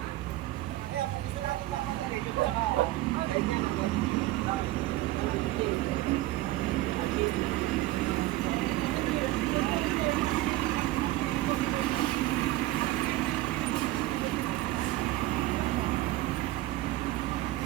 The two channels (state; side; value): quieter; left; 17.0 dB